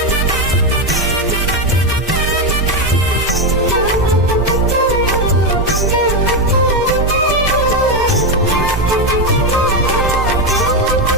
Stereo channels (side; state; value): both; normal; correlation 0.09